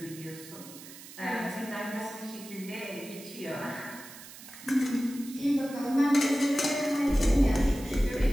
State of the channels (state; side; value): noise; right; hiss, 16 dB below the sound